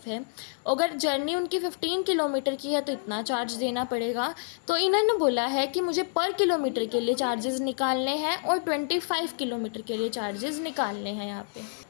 है। अगर जर्नी उनकी 15 किलोमीटर की है तो इतना चार्ज देना पड़ेगा। तो इन्होंने बोला है कि मुझे पर किलोमीटर के लिए चार्जेस निकालने हैं और 25 किलोमीटर के लिए चार्जेस निकालने हैं यहाँ पे।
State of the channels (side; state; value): right; silent; 59 dB below the other